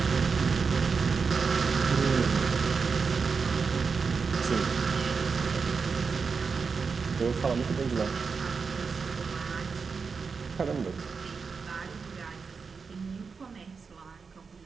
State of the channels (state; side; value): quieter; left; 5.2 dB